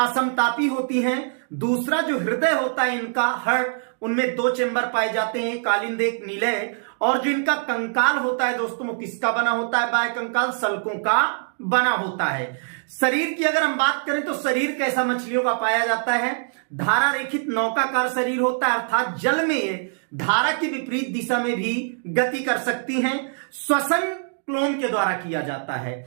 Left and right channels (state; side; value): silent; left; digital silence